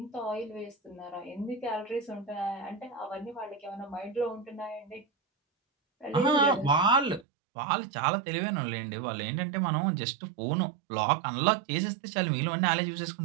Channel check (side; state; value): left; drops out; at 7.2 s